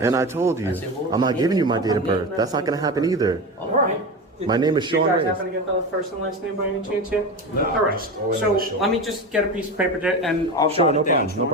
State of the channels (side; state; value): both; normal; correlation 0.24